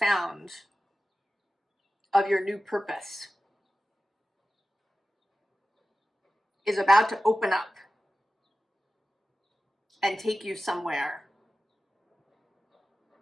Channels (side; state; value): both; normal; correlation 0.95